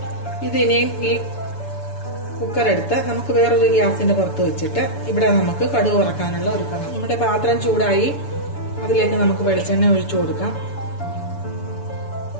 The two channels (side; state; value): right; late; 7.0 ms